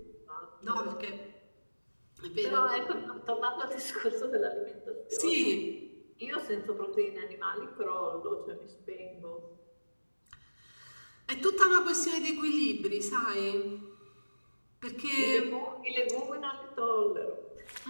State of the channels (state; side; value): inverted; both; correlation -1.00